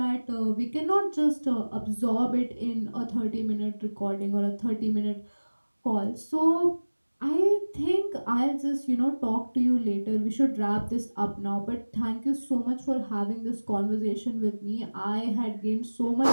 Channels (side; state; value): both; inverted; correlation -1.00